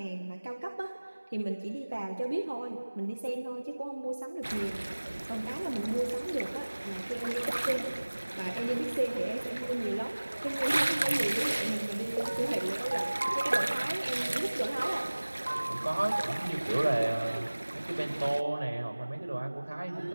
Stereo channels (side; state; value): both; inverted; correlation -1.00